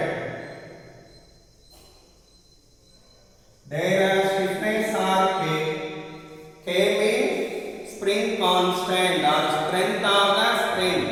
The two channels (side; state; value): both; identical; correlation 1.00